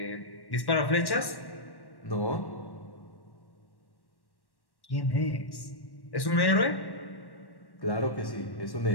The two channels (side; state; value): right; late; 1.1 ms